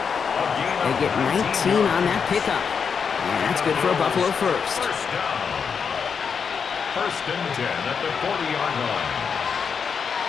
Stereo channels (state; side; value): quieter; right; 6.3 dB